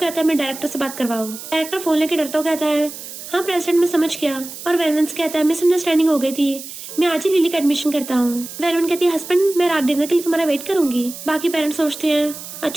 है मैं डायरेक्टर से बात करवाऊं। डायरेक्टर फोन लेके डरता कहता है हाँ प्रेसिडेंट मैं समझ गया। और वैलेंस कहता है मिसअंडरस्टैंडिंग हो गई थी, मैं आज ही लिली का एडमिशन करता हूँ। वैलेंस कहती है हस्बैंड मैं रात डिनर के लिए तुम्हारा वेट करूंगी। बाकी पेरेंट्स सोचते हैं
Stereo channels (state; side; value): noise; right; hiss, 12 dB below the sound